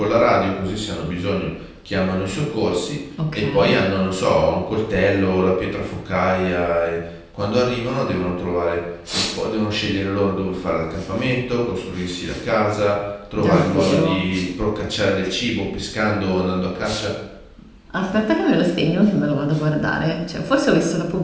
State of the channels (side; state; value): both; identical; correlation 1.00